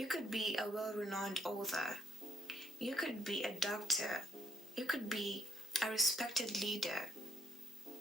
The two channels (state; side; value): normal; both; correlation 0.71